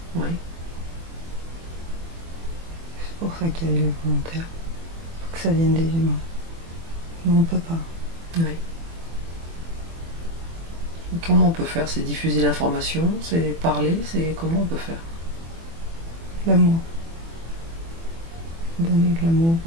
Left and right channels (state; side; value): late; left; 24 ms